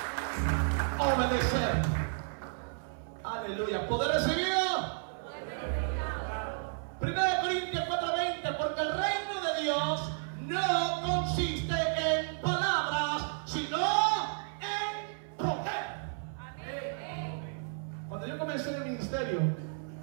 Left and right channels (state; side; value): silent; left; 56 dB below the other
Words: Obedecer. Aleluya. Poder recibido. 1 Corintios 4:20, porque el reino de Dios no consiste en palabras, sino en poder. Cuando yo comencé en el ministerio,